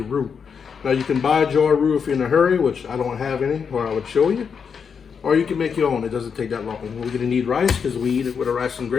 roux. Now, you can buy a jar of roux if you're in a hurry, which I don't have any, or I would show you. Or you can make your own. It doesn't take that long. We're going to need rice because we eat it with a rice and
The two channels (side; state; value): right; quieter; 6.4 dB